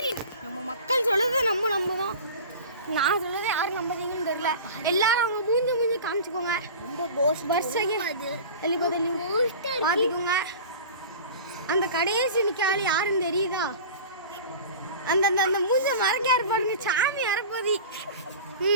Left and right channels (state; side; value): inverted; both; correlation -0.36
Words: நம்ம மக்கள் சொல்லுறது நம்ம தான். நான் சொல்லுறது யாரும் நம்புறீங்கன்னு தெரியல. எல்லாரும் அவங்க மூஞ்சி காமிச்சுக்கோங்க. பாத்துக்கோங்க. அந்த கடைசி நிக்காலி யாருன்னு தெரியுதா? அந்த அந்த அந்த மூஞ்ச மறைக்காரு பாருங்க, சாமி அரைப்பதி.